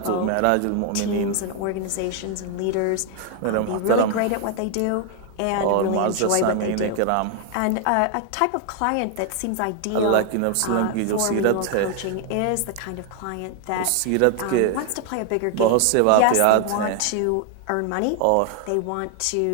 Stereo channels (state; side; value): different; both; correlation 0.00